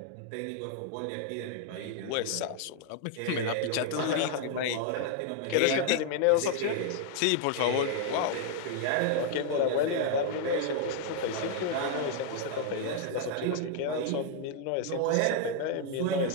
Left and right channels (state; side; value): different; both; correlation 0.00